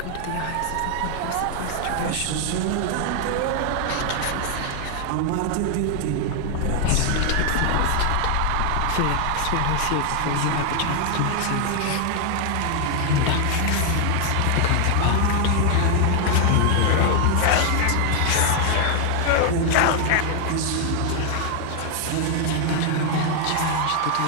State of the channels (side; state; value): both; different; correlation 0.00